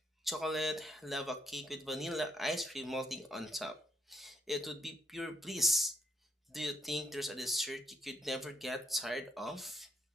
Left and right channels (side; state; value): both; normal; correlation 0.75